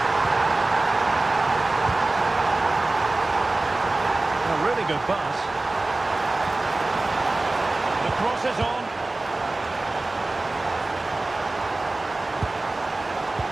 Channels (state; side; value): quieter; left; 3.0 dB